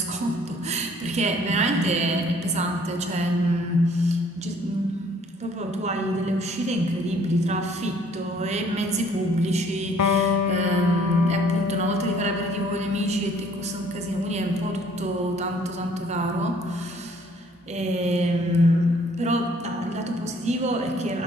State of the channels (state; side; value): normal; both; correlation 0.59